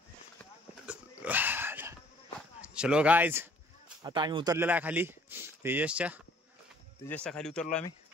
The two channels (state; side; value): normal; both; correlation 0.58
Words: चलो गाईज. आता आम्ही उतरलेला आहे खाली. तेजसच्या खाली उतरलो आम्ही.